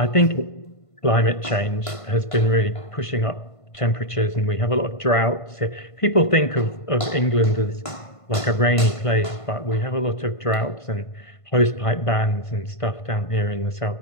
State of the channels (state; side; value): late; right; 1.5 ms